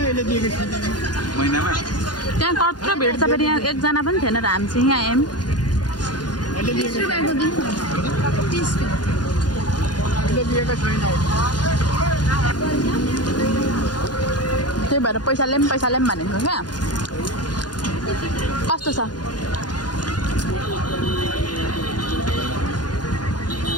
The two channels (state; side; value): late; right; 0.70 ms